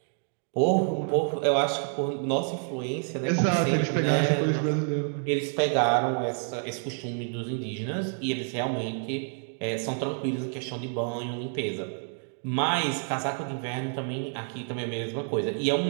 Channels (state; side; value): silent; left; 55 dB below the other